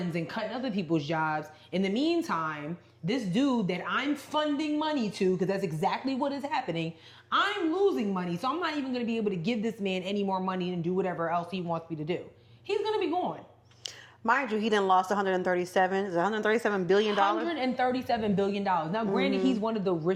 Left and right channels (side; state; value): both; identical; correlation 1.00